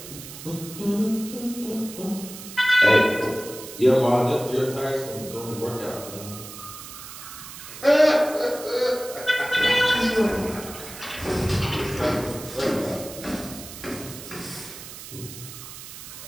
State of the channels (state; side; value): noise; right; hiss, 13 dB below the sound